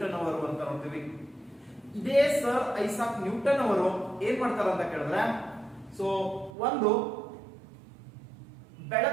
ಅವರು ಅಂತ ನೋಡ್ತೀವಿ. ಇದೇ ಸರ್ ಐಸಾಕ್ ನ್ಯೂಟನ್ ಅವರು ಏನ್ ಮಾಡ್ತಾರ ಅಂತ ಕೇಳಿದ್ರೆ, ಒಂದು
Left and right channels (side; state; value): left; drops out; at 6.5 s